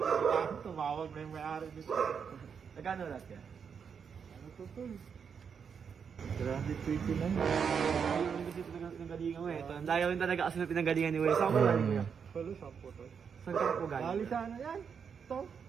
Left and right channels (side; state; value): left; quieter; 6.7 dB